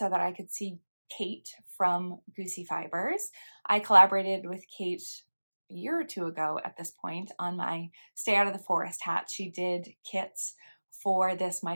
that I could see Kate from Goosey Fibers. I collaborated with Kate a year or 2 ago at this point on my Stay Out of the Forest hat. She did kits for this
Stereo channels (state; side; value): inverted; both; correlation -1.00